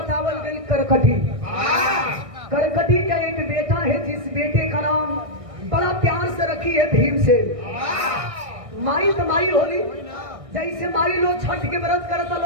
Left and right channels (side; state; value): left; late; 1.6 ms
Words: गई करकटी। करकटी का एक बेटा है जिस बेटे का नाम बड़ा प्यार से रखी है भीम से। माई तो माई होली, जैसे माई लोग छठ के व्रत करता